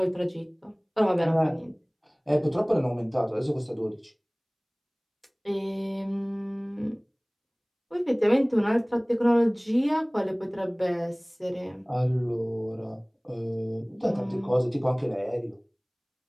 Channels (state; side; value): identical; both; correlation 1.00